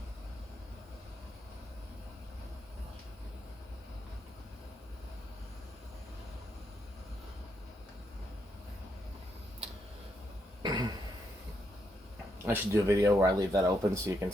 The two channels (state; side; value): normal; both; correlation 0.79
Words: I should do a video where I leave that open so you can